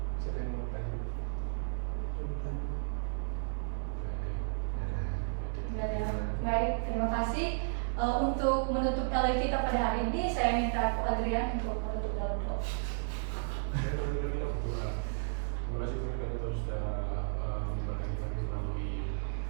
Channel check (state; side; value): silent; left; digital silence